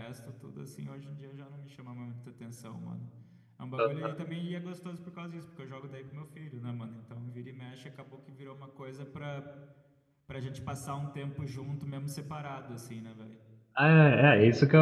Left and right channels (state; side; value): identical; both; correlation 1.00